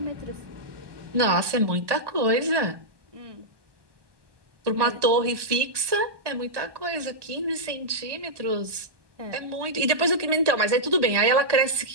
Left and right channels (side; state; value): left; late; 1.2 ms